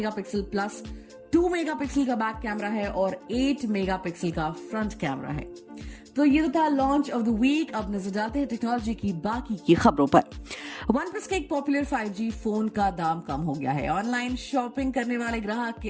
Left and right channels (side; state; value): both; identical; correlation 1.00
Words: प्लस 2 मेगापिक्सल का बैक कैमरा है और 8 मेगापिक्सल का फ्रंट कैमरा है। तो ये तो था लॉन्च ऑफ द वीक। अब नजर डालते हैं टेक्नोलॉजी की बाकी की खबरों पर। OnePlus के एक पॉपुलर 5G फोन का दाम कम हो गया है। ऑनलाइन शॉपिंग करने वाले ग्राहक के